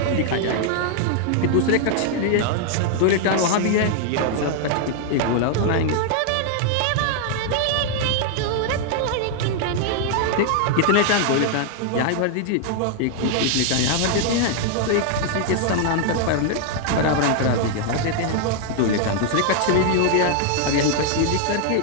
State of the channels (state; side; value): different; both; correlation 0.00